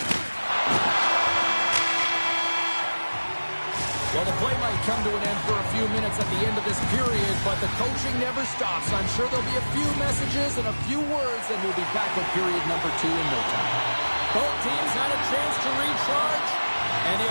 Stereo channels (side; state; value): both; inverted; correlation -1.00